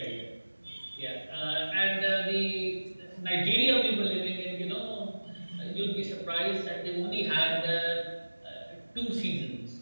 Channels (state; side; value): inverted; both; correlation -1.00